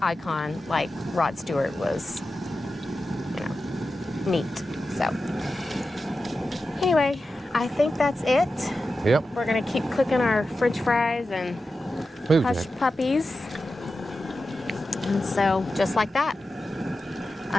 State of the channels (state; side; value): normal; both; correlation 0.92